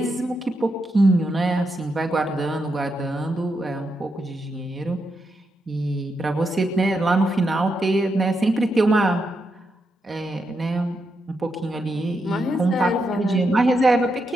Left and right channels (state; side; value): normal; both; correlation 0.83